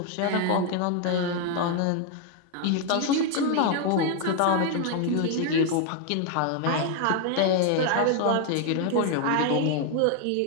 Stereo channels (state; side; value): different; both; correlation 0.00